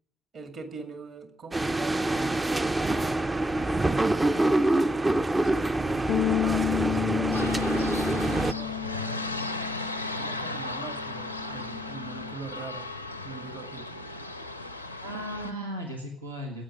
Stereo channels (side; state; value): both; normal; correlation 0.72